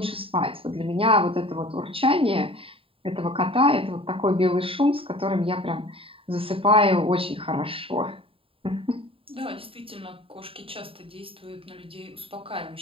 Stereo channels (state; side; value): late; left; 0.27 ms